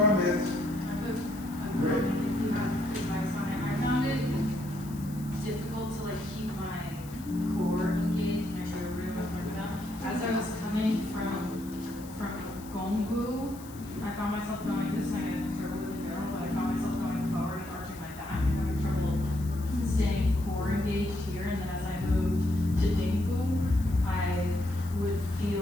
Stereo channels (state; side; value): noise; left; hiss, 19 dB below the sound